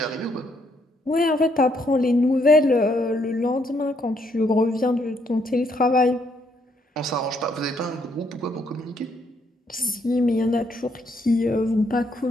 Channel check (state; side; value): normal; both; correlation 0.72